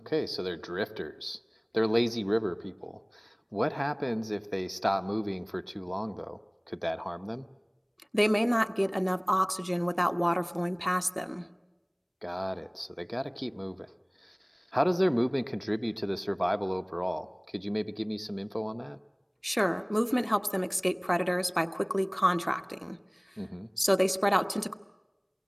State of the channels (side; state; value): both; identical; correlation 1.00